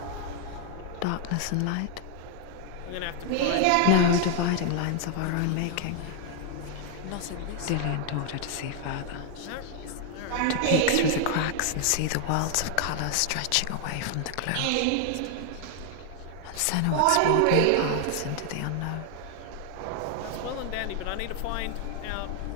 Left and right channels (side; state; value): both; different; correlation 0.00